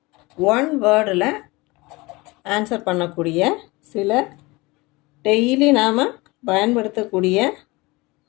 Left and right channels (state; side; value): quieter; right; 23.2 dB